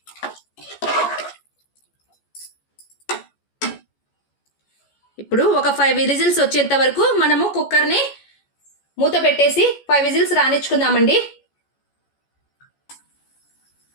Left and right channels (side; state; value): right; late; 14 ms